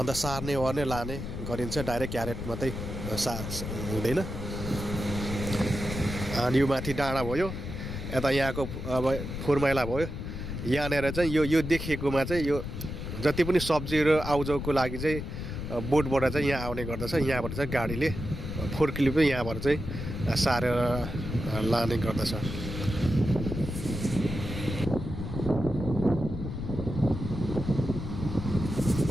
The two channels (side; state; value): left; noise; rumble, 6 dB below the sound